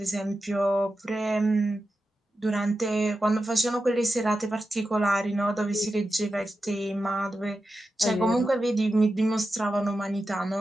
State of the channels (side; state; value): both; normal; correlation 0.91